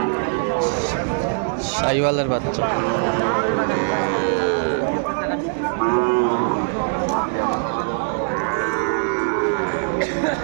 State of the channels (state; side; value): silent; left; digital silence